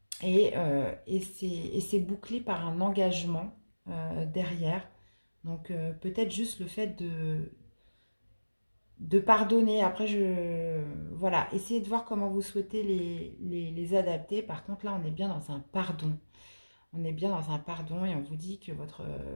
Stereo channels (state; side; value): inverted; both; correlation -1.00